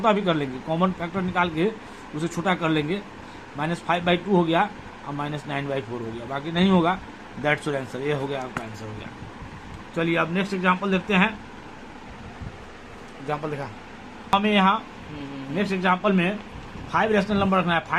भी कर लेंगे, कॉमन फैक्टर निकाल के उसे छोटा कर लेंगे। -5/2 हो गया और -9/4 हो गया, बाकी नहीं होगा। दैट्स योर आंसर, ये हो गया आपका आंसर हो गया। चलिए अब नेक्स्ट एग्जांपल देखते हैं। एग्जांपल देखा हमें यहाँ नेक्स्ट एग्जांपल में 5 रैशनल नंबर रखना है।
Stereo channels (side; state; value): both; identical; correlation 1.00